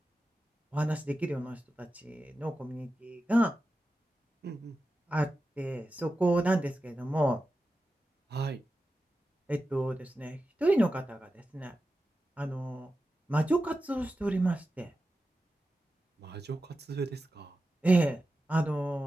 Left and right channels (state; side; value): normal; both; correlation 0.92